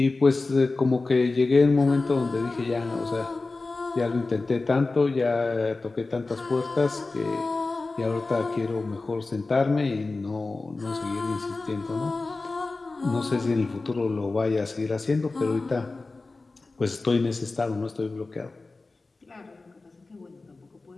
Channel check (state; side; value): quieter; right; 3.5 dB